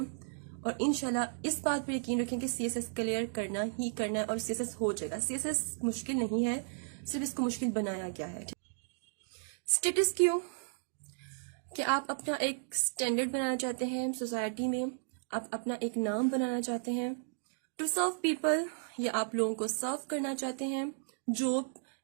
اور انشاءاللہ اس بات پر یقین رکھیں کہ CSS کلیئر کرنا ہی کرنا ہے, اور CSS ہو جائے گا. CSS مشکل نہیں ہے, صرف اس کو مشکل بنایا گیا ہے. اسٹیٹس کیوں کہ آپ اپنا ایک سٹینڈرڈ بنانا چاہتے ہیں سوسائٹی میں, آپ اپنا ایک نام بنانا چاہتے ہیں. ٹو سرو پیپل, یا آپ لوگوں کو سرو کرنا چاہتے ہیں. جاب,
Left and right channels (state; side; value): silent; left; digital silence